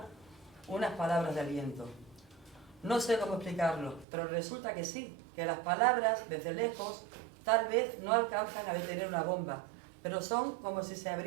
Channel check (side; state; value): left; drops out; at 4.0 s